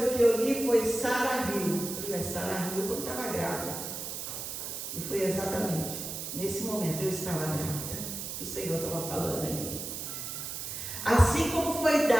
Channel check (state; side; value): noise; right; hiss, 6 dB below the sound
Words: que eu li foi Sara riu. Eu falei, Sara riu quando estava grávida. E foi exatamente nesse momento eu estava grávida. O Senhor estava falando ali. Assim como foi